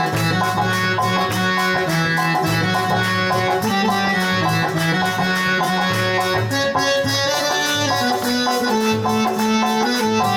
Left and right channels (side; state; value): both; identical; correlation 1.00